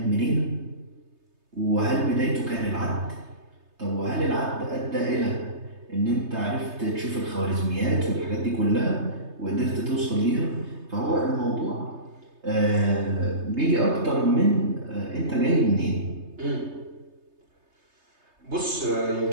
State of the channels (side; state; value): left; late; 3.3 ms